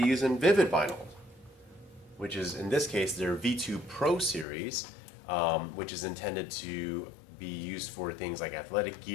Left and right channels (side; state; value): right; drops out; at 4.5 s